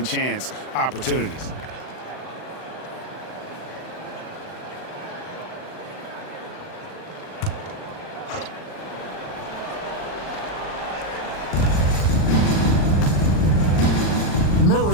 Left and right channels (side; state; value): right; late; 39 ms